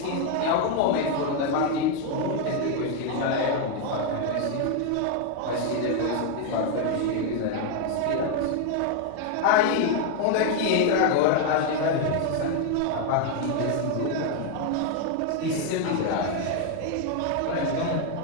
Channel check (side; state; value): both; different; correlation 0.01